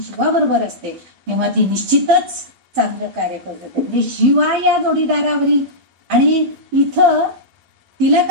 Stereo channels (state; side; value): late; left; 12 ms